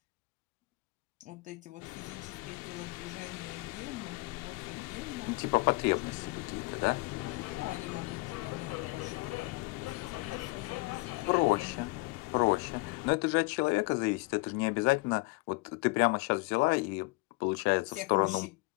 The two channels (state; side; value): quieter; right; 24.3 dB